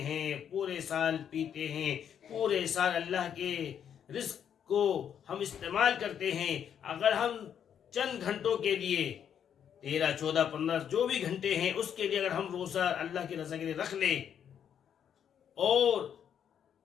پورے سال پیتے ہیں، پورے سال اللہ کے رزق کو ہم استعمال کرتے ہیں. اگر ہم چند گھنٹوں کے لیے 13 14 15 جو بھی گھنٹے ہیں اس کے لیے اگر ہم روزہ اللہ کی رضا کے لیے رکھ لیں اور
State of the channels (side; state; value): right; quieter; 8.6 dB